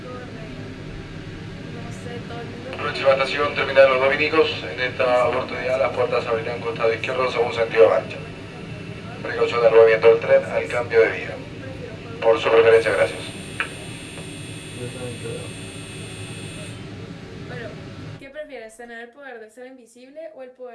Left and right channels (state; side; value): identical; both; correlation 1.00